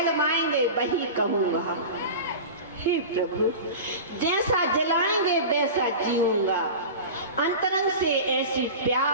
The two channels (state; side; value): inverted; both; correlation -0.31